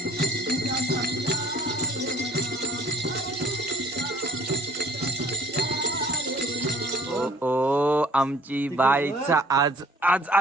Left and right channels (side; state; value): both; normal; correlation 0.54